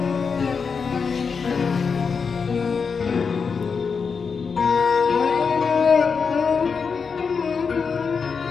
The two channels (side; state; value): right; quieter; 5.6 dB